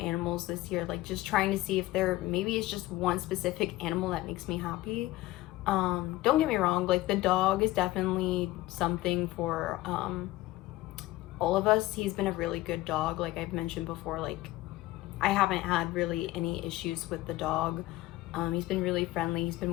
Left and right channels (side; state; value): right; quieter; 17.8 dB